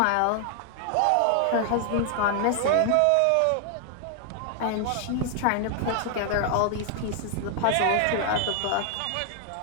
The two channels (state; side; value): different; both; correlation 0.00